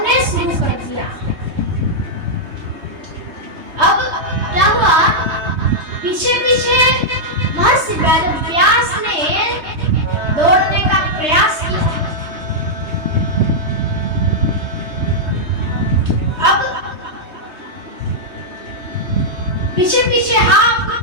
शुरू कर दिया। अब क्या हुआ, पीछे पीछे महर्षि वेदव्यास ने दौड़ने का प्रयास किया। अब पीछे पीछे हा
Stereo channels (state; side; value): late; left; 3.2 ms